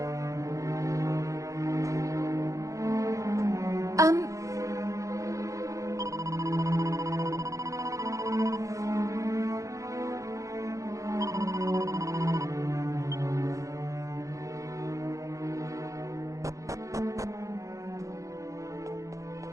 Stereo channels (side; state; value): left; late; 0.15 ms